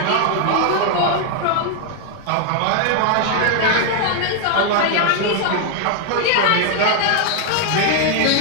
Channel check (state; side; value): different; both; correlation 0.00